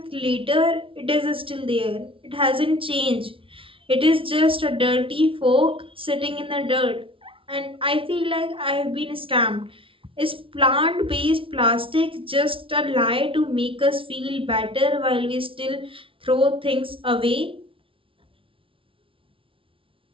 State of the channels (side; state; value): left; late; 0.25 ms